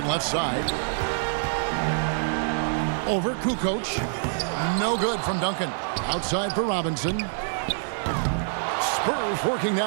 left side. Over Kukoc. No good from Duncan. Outside for Robinson. Spurs working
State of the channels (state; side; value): silent; left; digital silence